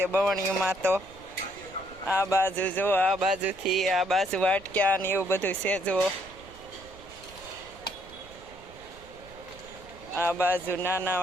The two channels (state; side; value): noise; right; rumble, 22 dB below the sound